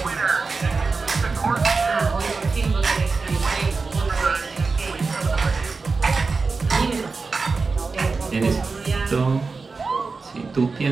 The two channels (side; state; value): left; quieter; 4.3 dB